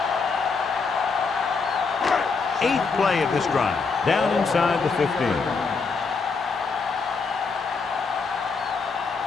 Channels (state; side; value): quieter; right; 4.7 dB